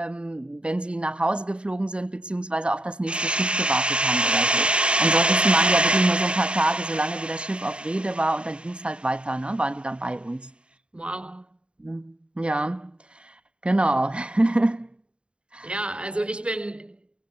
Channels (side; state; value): left; late; 0.054 ms